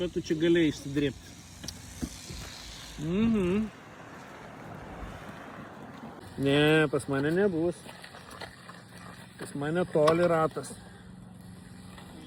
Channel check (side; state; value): both; identical; correlation 1.00